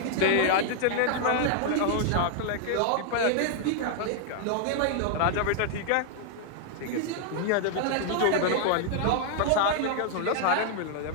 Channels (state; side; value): different; both; correlation 0.00